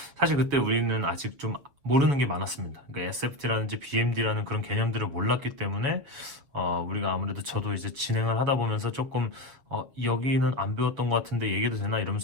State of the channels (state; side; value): late; left; 7.4 ms